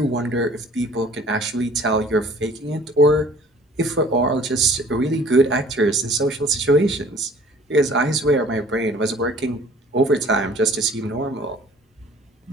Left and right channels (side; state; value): both; normal; correlation 0.51